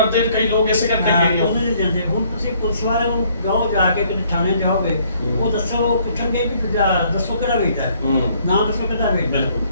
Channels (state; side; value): inverted; both; correlation -0.64